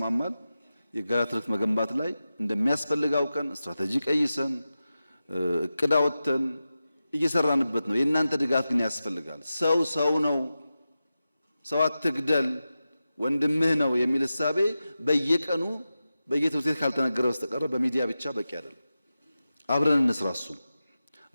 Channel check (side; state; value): both; inverted; correlation -0.93